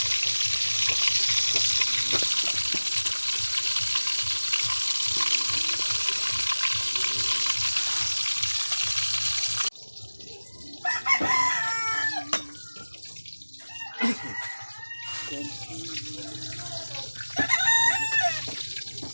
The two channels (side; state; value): both; inverted; correlation -1.00